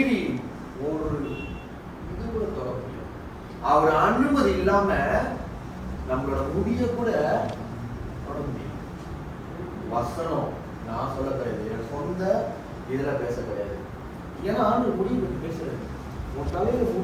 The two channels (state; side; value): identical; both; correlation 1.00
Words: ஒரு இது கூட தொட முடியும். அவர் அனுமதி இல்லாம நம்மளோட முடிய கூட தொட முடியும். வசனம் நான் சொல்ல கிடையாது, என் சொந்த இதுல பேச கிடையாது. ஏன்னா ஆண்டு முடிவு பற்றி பேசுறது, உன் தலையில